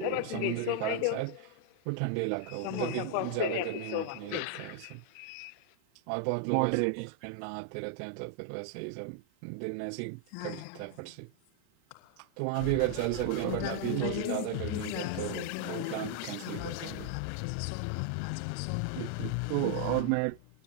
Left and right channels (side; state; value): both; different; correlation 0.00